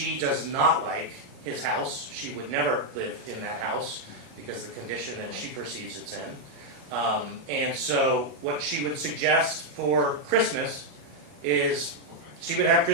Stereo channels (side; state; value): left; late; 37 ms